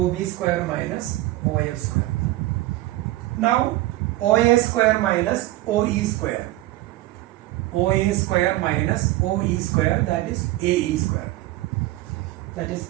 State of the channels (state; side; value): quieter; left; 17.2 dB